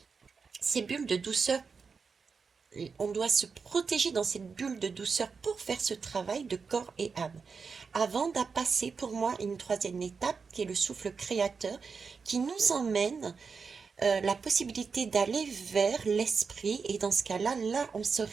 Ces bulles de douceur, on doit se protéger dans cette bulle de douceur pour faire ce travail de corps et âme. Avant d'à passer pour moi une troisième étape qui est le souffle créateur qui nous emmène la possibilité d'aller vers l'esprit et dans ce cas-là, on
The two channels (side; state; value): left; quieter; 5.3 dB